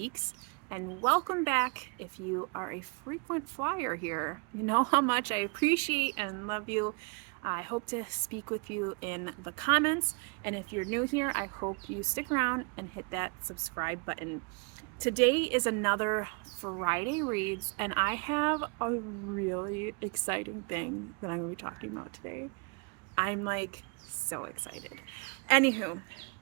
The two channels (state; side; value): quieter; left; 33.0 dB